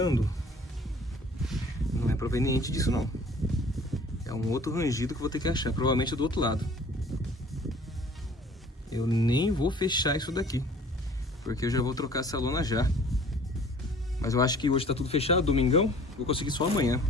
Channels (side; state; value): both; normal; correlation 0.51